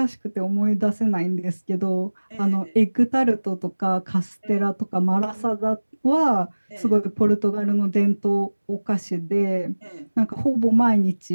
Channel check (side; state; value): both; inverted; correlation -1.00